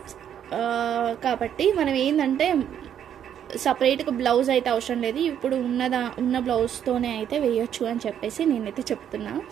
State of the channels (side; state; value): left; quieter; 9.4 dB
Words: కాబట్టి మనం ఏంటంటే సపరేట్గా బ్లౌజ్ అయితే అవసరం లేదు, ఇప్పుడు ఉన్న బ్లౌజ్తోనే అయితే వేయొచ్చు అని చెప్పేసి నేనైతే చెప్తున్నా.